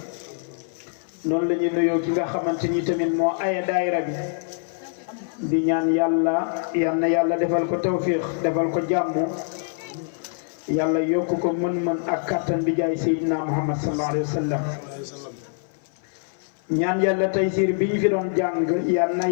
noonu la ñu nuyoo ki nga xamante ni tamit moo aya daayira bi di ñaan yàlla yal na yàlla defal ko tawfiix defal ko jàmm yàlla yokk ko mën-mën ak kattan bi jaay Seydina Muhammad sallallahu alayhi wa sallam ñaan yàlla taysiir bi ñu fi doon jàng yal na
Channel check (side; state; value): right; silent; 58 dB below the other